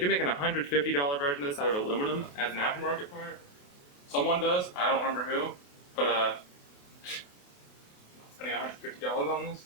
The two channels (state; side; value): late; right; 28 ms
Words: make an $150 version of this out of aluminum as an aftermarket part. Someone does, I don't remember who, but spending $150 on this.